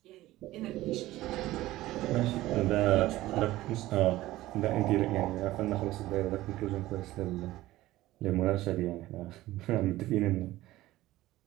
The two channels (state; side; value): quieter; left; 16.5 dB